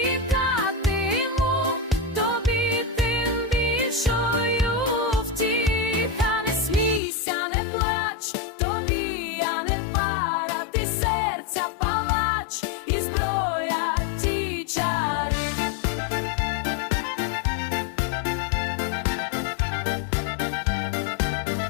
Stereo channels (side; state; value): right; drops out; at 7.0 s